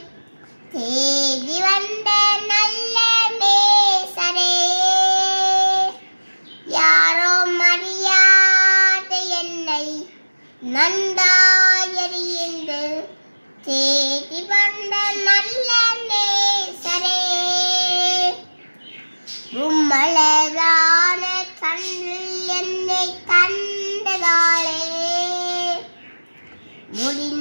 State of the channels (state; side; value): inverted; both; correlation -1.00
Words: தேடி வந்த நல்ல நேசரே. யாரோ மரியாத என்னை நன்றாய் அறிந்து தேடி வந்த நல்ல நேசரே. உம்மலதான தந்தல் என்னை தந்ததாலே